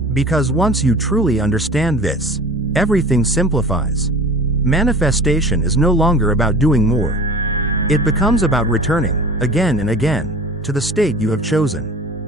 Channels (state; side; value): normal; both; correlation 0.39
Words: Because once you truly understand this, everything simplifies. Manifestation is no longer about doing more. It becomes about returning, again and again, to the state you have